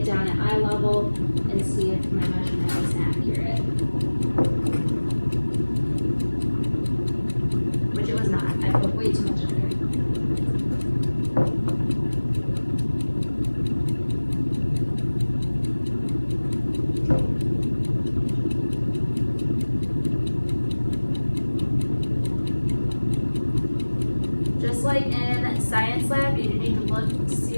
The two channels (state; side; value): inverted; both; correlation -1.00